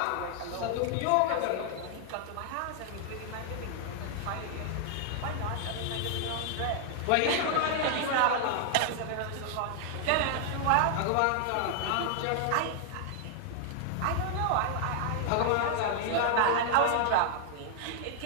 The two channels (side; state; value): both; different; correlation -0.01